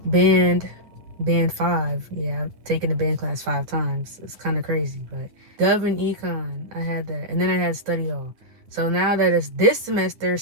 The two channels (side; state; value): left; late; 9.3 ms